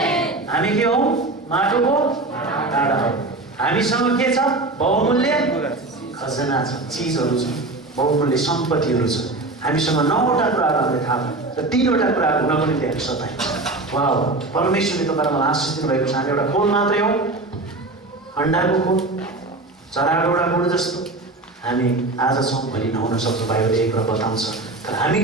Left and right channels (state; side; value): quieter; left; 3.1 dB